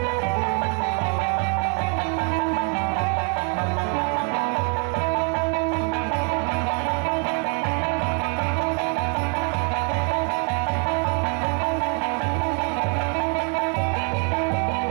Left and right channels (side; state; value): left; quieter; 34.6 dB